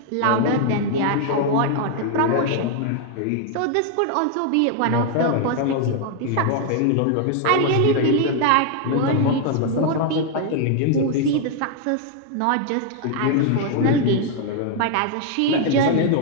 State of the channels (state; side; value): different; both; correlation 0.00